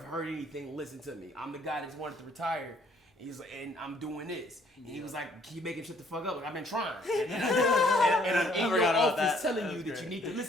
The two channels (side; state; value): both; normal; correlation 0.63